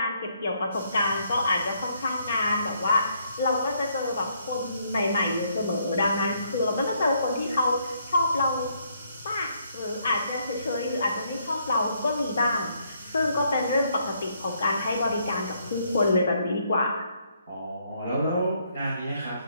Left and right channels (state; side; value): inverted; both; correlation -0.71